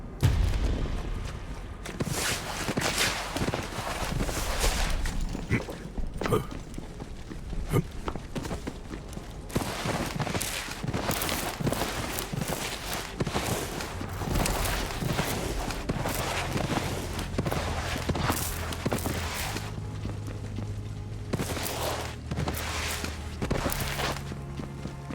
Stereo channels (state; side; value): identical; both; correlation 1.00